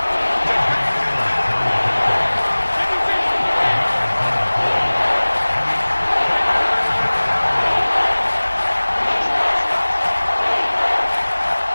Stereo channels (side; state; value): both; inverted; correlation -1.00